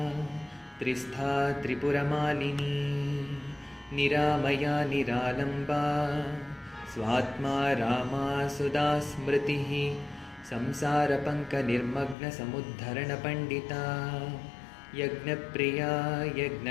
त्रिस्था त्रिपुरमालिनी निरामया निरालम्बा स्वात्मा रामा सुधा स्मृतिः संसारपङ्कनिर्मग्नसमुद्धरणपण्डिता यज्ञप्रिया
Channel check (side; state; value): right; drops out; at 12.2 s